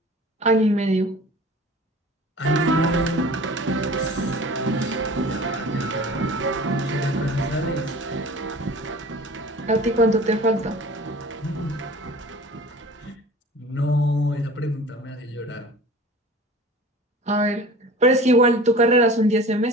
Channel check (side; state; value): both; normal; correlation 0.42